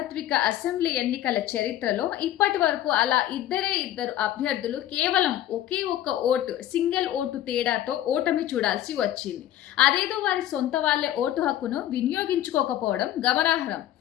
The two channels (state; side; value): quieter; right; 12.6 dB